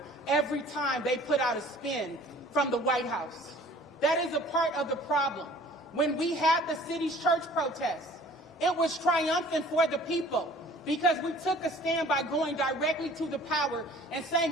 every time they put out a spin from the White House. That is a part of the problem. When we had the city's church protests, it was triumphant for the people because we took a stand by going directly to the power and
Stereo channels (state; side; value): normal; both; correlation 0.50